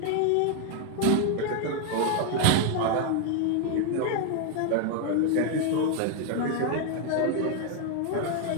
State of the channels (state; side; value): different; both; correlation 0.00